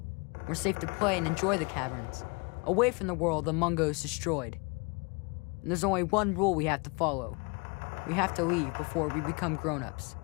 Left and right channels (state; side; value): quieter; right; 31.1 dB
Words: we're safe to play and enjoy the caverns, away from the world the Mungos destroyed. And there's only one rule we have to follow. We have to leave before we become grown-ups.